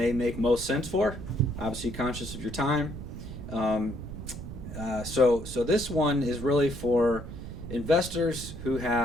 make most sense for. Obviously conscious of your time. So this one is really for investors who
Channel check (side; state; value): right; noise; rumble, 9 dB below the sound